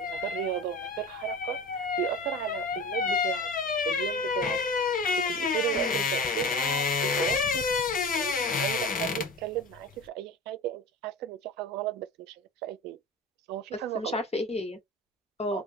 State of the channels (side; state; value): both; normal; correlation 0.33